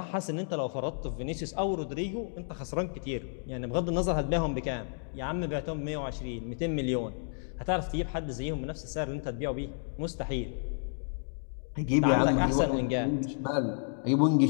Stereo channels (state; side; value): silent; right; digital silence